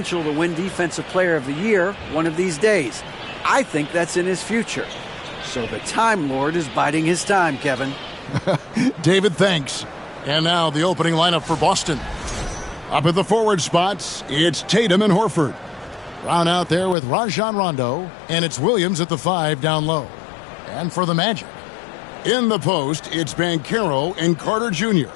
to win Defensive Player of the Year one of these days. I think that's in his future. So the Time Lord is biding his time, Kevin. David, thanks. And now the opening lineup for Boston. Up at the forward spots, it's Tatum and Horford. Brown out there with Rajon Rondo, and it's Williams at the 5 down low. And for the Magic, in the post, it's Banchero and Carter Jr.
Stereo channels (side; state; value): right; drops out; at 16.9 s